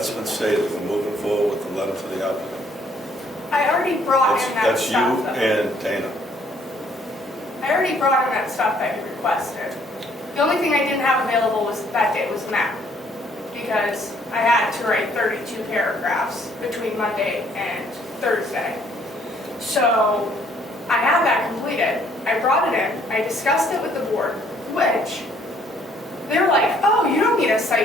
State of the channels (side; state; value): both; normal; correlation 0.64